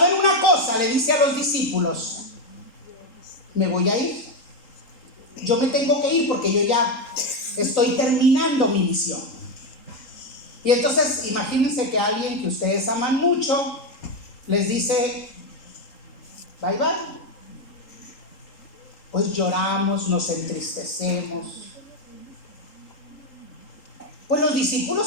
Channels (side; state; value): right; late; 3.8 ms